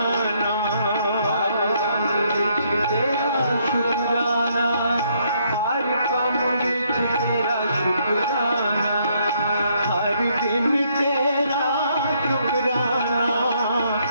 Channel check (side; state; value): both; inverted; correlation -0.71